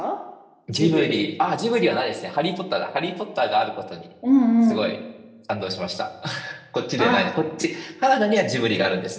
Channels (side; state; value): both; identical; correlation 1.00